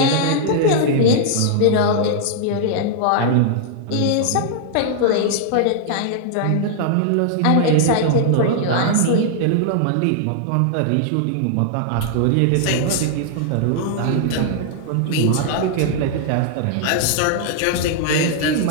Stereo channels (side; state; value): both; different; correlation -0.01